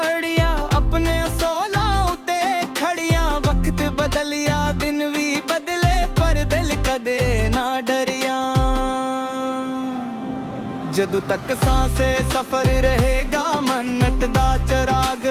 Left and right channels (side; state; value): both; identical; correlation 1.00